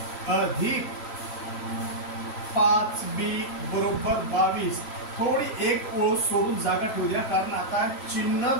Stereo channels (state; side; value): late; right; 3.0 ms